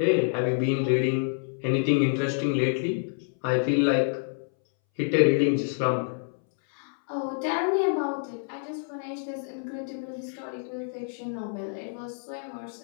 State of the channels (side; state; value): right; silent; 60 dB below the other